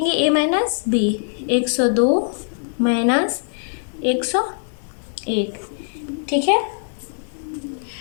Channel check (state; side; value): silent; right; digital silence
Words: ए माइनस बी, 102 माइनस 101। ठीक है,